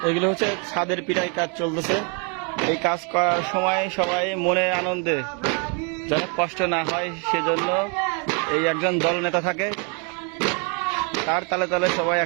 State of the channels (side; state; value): left; quieter; 36.3 dB